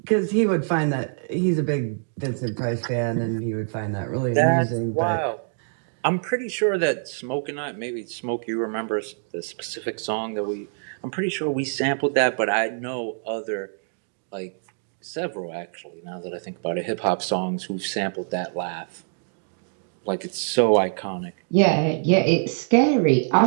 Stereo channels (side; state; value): left; silent; digital silence